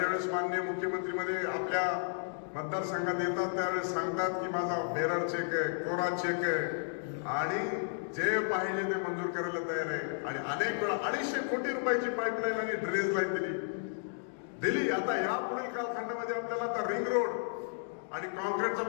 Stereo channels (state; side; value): silent; right; digital silence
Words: माननीय मुख्यमंत्री मध्ये आपल्या मतदारसंघात येतात त्यावेळेस सांगतात की माझा बेरर चेक आहे, कोरा चेक आहे आणि जे पाहिजे ते मंजूर करायला तयार आहे. आणि अनेक वेळा 250 कोटी रुपयाची पाईपलाईन आणि ड्रेनेज लाईन दिली. आता या पुढील कालखंडामध्ये आपल्याला आता रिंग रोड आणि कॉन्क्रीटचा